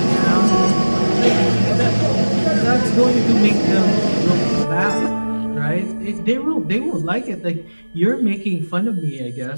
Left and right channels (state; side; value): inverted; both; correlation -1.00